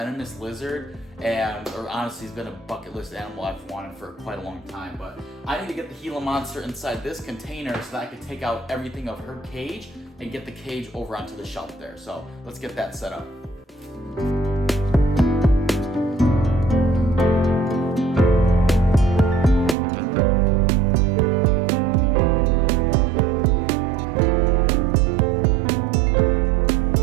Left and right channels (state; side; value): drops out; left; at 19.8 s